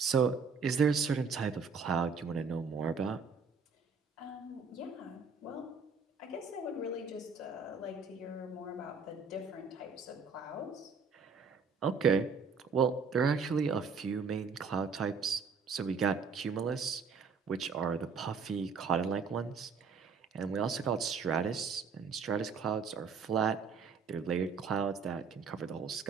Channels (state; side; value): quieter; left; 5.2 dB